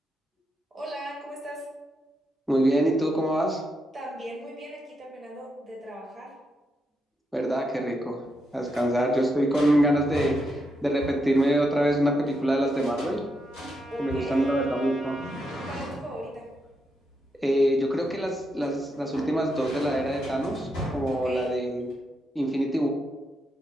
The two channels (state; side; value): normal; both; correlation 0.82